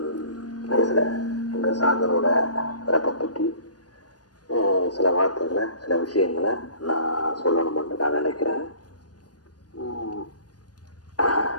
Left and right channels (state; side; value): late; right; 0.69 ms